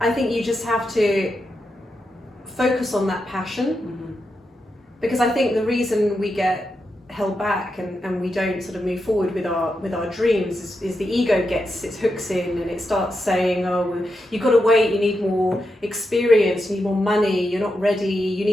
I think you just have to focus on that passion, because I think the reason we get held back and we don't sort of move forward with our dreams is the ego gets its hooks in, and it starts saying, oh, well, you've got to wait, you need more experience, you need more money, you're not ready, you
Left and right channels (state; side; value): normal; both; correlation 0.86